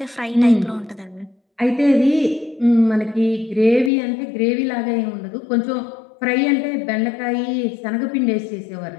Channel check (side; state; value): right; drops out; at 3.9 s